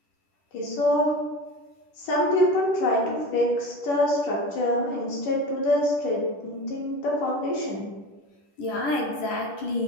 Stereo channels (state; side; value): late; right; 10 ms